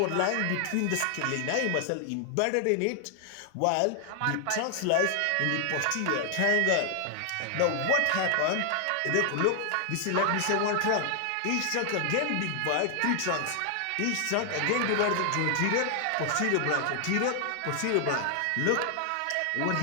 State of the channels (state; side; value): different; both; correlation 0.00